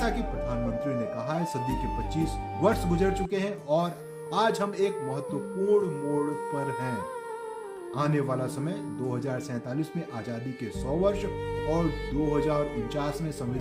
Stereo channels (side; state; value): both; identical; correlation 1.00